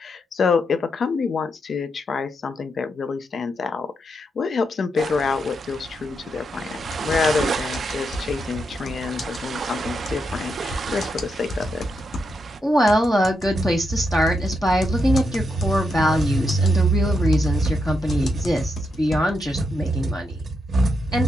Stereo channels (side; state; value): both; normal; correlation 0.82